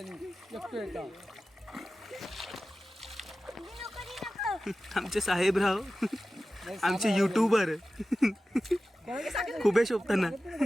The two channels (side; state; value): both; normal; correlation 0.94